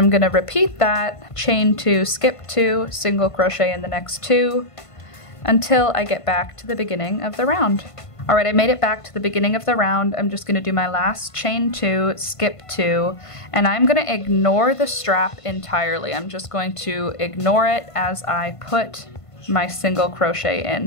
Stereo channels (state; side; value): late; right; 1.5 ms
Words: gonna repeat that, chain 2, skip 2, single crochet in the next 2, until I get back to the beginning of the round. All right, I made it back to the beginning of the round. I'm just gonna do my last chain 2, skip 2, and I'm gonna ignore the strap entirely. I'm just going to ignore it as I put my single crochet in.